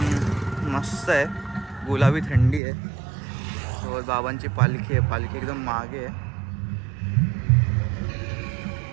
मस्त आहे, गुलाबी थंडी आहे, सोबत बाबांची पालखी आहे, पालखी एकदम मागे आहे।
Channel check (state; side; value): drops out; left; at 2.6 s